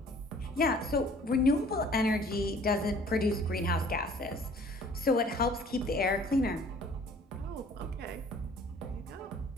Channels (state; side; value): normal; both; correlation 0.53